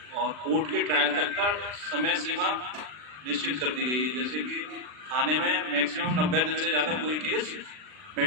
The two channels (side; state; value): left; late; 39 ms